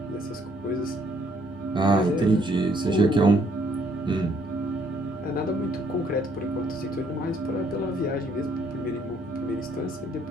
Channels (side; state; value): both; normal; correlation 0.67